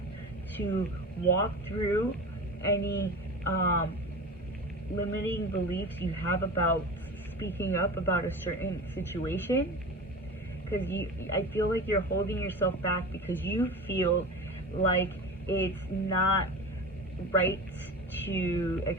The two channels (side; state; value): both; normal; correlation 0.31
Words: to walk through any limiting beliefs you have about speaking up about a certain situation, because I feel like you're holding yourself back because you feel like it's not right to